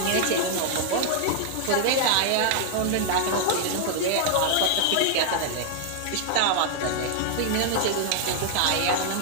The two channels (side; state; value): both; different; correlation 0.00